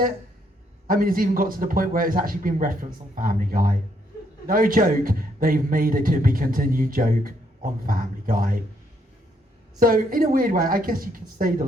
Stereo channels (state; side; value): normal; both; correlation 0.72